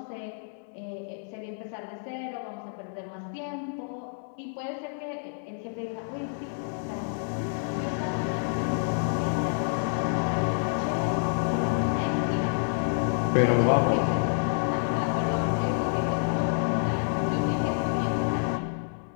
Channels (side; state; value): right; silent; digital silence